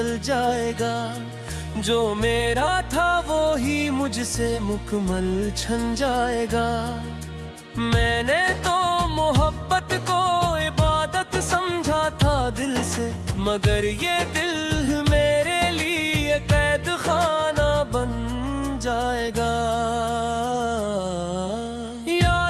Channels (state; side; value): identical; both; correlation 1.00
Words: जाएगा, जो मेरा था वो ही मुझसे मुकम्मल छन जाएगा। मैंने तो मोहब्बत को इबादत समझा था दिल से, मगर ये दिल मेरे लिए कैद खाना बन जाएगा।